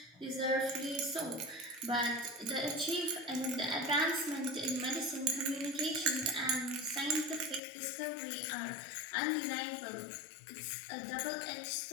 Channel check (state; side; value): drops out; right; at 7.6 s